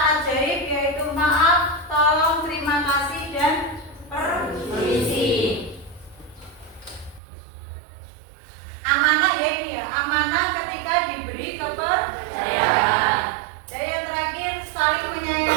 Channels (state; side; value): drops out; left; at 7.2 s